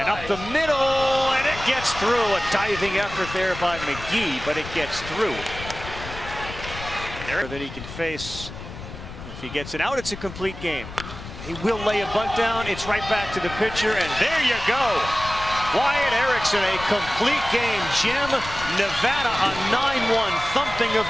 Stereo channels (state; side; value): noise; left; rumble, 12 dB below the sound